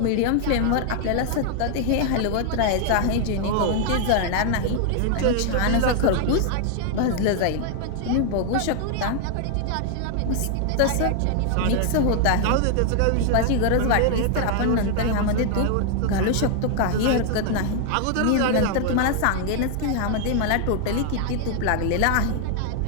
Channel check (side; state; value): both; different; correlation 0.00